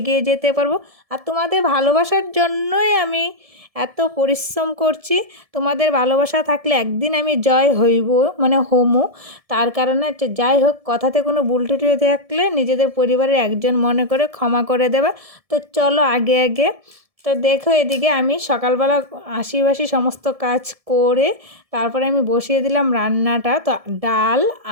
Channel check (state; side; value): late; left; 1.7 ms